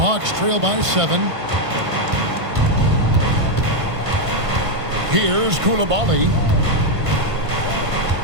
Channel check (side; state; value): left; late; 1.5 ms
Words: trail by 7. Here's Koulibaly.